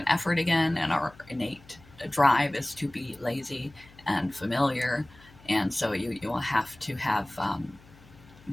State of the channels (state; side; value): noise; left; hum, 24 dB below the sound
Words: effort again. And our innate drive is to be lazy and familiar, and so you will have to have